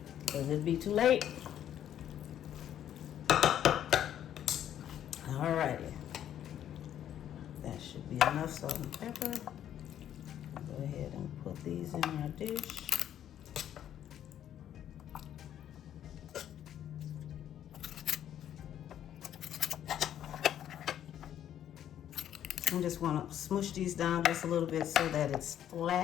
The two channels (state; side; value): quieter; right; 10.6 dB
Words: because it'd be too late. Alrighty. That should be enough salt and pepper. Go ahead and put these in our dish. I just want to smush these down just a little bit so that it's